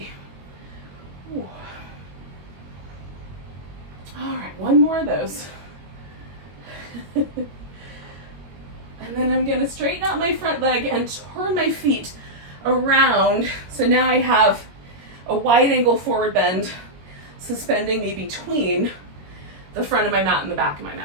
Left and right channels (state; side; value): late; left; 21 ms